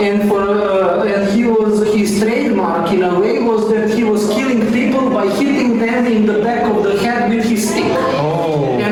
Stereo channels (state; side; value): identical; both; correlation 1.00